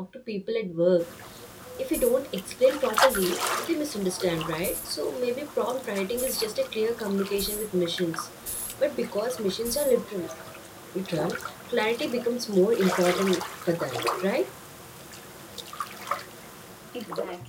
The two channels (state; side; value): identical; both; correlation 1.00